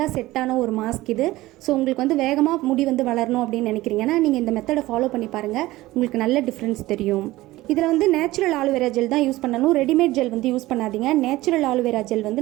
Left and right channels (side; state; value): left; quieter; 17.8 dB